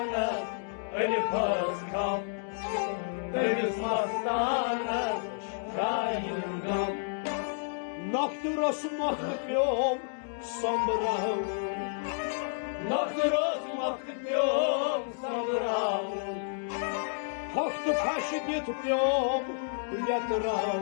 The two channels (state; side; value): silent; right; digital silence